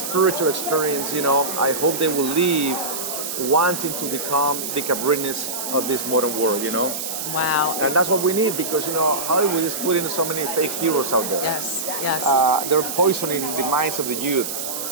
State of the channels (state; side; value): noise; right; hiss, 5 dB below the sound